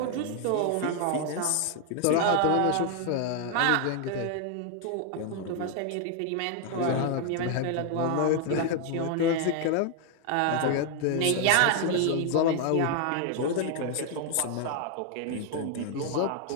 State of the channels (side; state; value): both; different; correlation 0.00